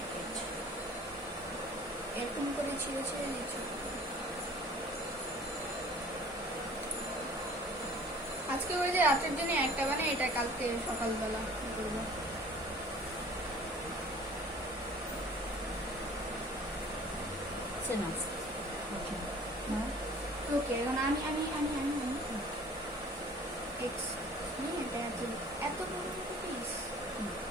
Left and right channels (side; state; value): both; normal; correlation 0.49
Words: it. এরকম করে ছিঁড়ে ছিঁড়ে দিচ্ছি। আজকে ওই যে রাতের জন্য একটা বানাই, এটা কালকে সকালবেলা করবো। It's enough. Okay. Now? ওকে, এখন আমি এটা এত বড় একটা পিস।